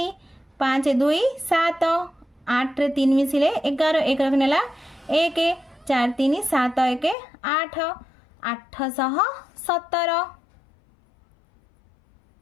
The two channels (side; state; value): right; drops out; at 7.2 s